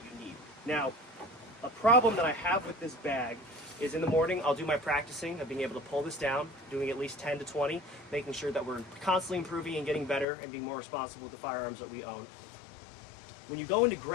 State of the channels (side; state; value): right; drops out; at 10.2 s